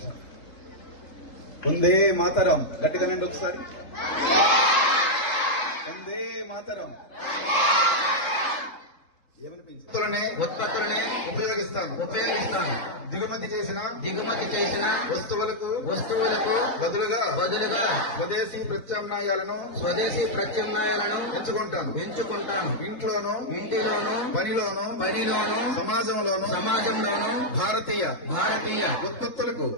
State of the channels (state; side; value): late; right; 3.7 ms